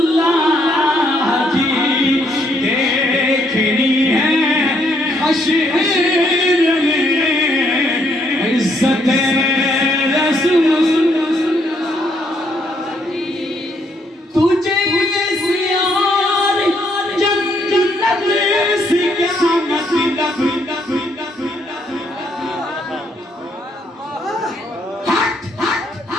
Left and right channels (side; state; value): both; normal; correlation 0.71